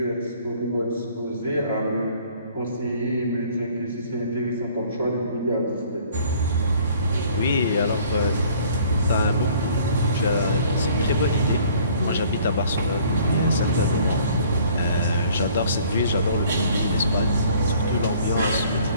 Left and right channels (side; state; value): both; inverted; correlation -0.56